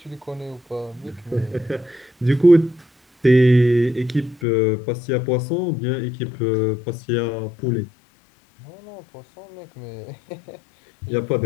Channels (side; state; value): right; drops out; at 4.5 s